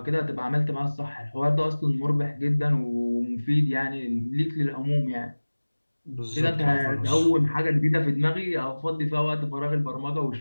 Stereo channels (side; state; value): both; inverted; correlation -1.00